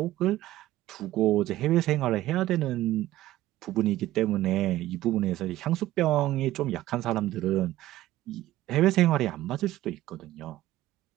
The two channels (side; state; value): left; quieter; 15.2 dB